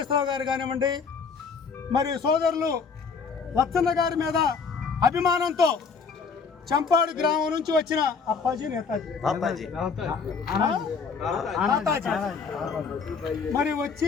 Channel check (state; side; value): quieter; right; 5.4 dB